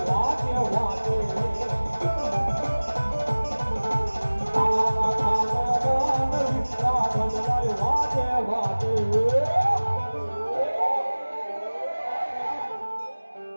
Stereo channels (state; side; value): inverted; both; correlation -1.00